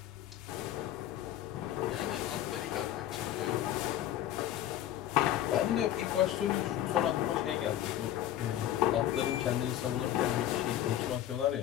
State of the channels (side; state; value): right; quieter; 12.2 dB